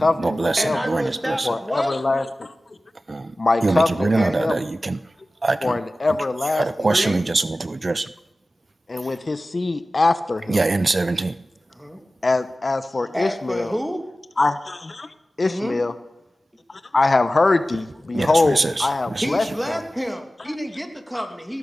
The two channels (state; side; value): normal; both; correlation 0.96